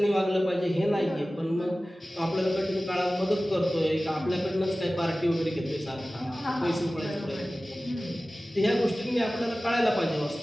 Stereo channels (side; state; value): both; normal; correlation 0.96